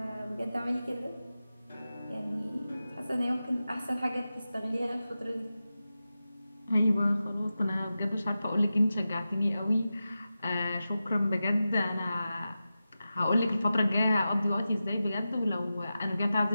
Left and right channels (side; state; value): both; inverted; correlation -0.93